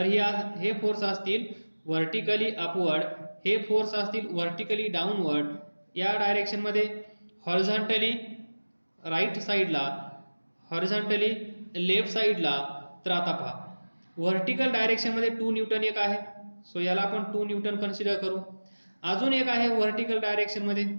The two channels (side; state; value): both; inverted; correlation -1.00